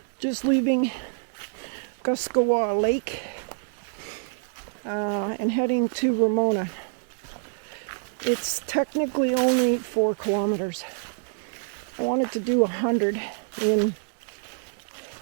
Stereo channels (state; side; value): silent; left; digital silence